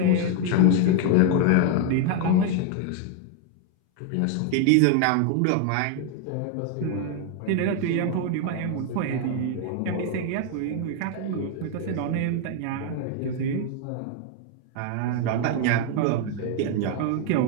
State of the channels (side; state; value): both; different; correlation 0.01